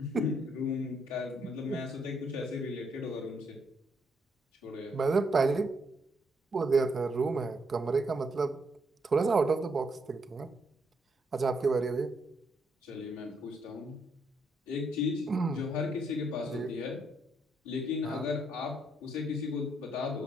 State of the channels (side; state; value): both; normal; correlation 0.75